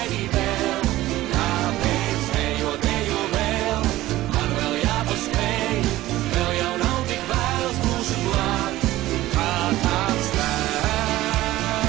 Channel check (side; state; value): left; quieter; 16.2 dB